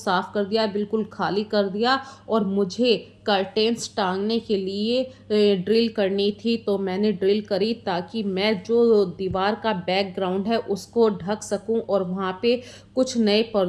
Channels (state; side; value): identical; both; correlation 1.00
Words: कर दिया, बिल्कुल खाली कर दिया। और मुझे कर्टेन्स टांगने के लिए ड्रिल करनी थी, तो मैंने ड्रिल करी ताकि मैं जो दीवार का बैकग्राउंड है उसको ढक सकूं, और वहाँ पे कुछ नए